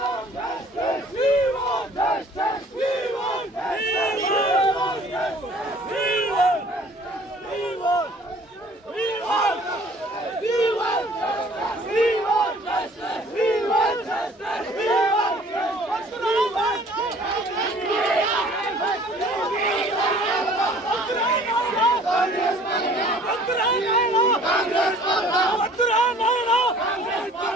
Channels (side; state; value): both; normal; correlation 0.53